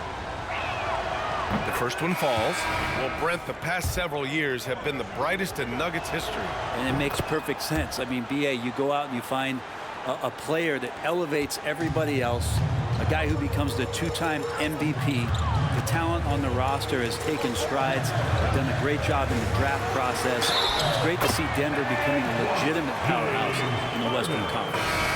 The first one falls. Well, Brent, the past several years have been the brightest in Nuggets history. And it makes perfect sense. I mean, B.A., you go out and you find a player that elevates everybody else, a guy who becomes the 2-time MVP. The talent on the roster has taken strides. They've done a great job in the draft process. It's great to see Denver becoming a legitimate powerhouse in the Western Conference.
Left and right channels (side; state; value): both; identical; correlation 1.00